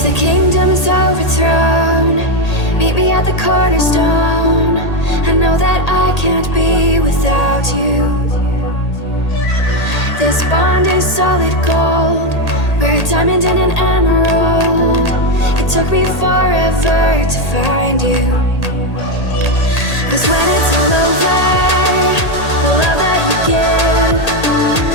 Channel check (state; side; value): late; right; 1.8 ms